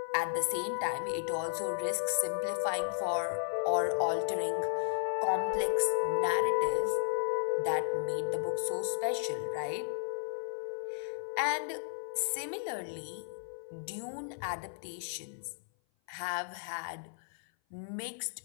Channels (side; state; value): right; silent; 55 dB below the other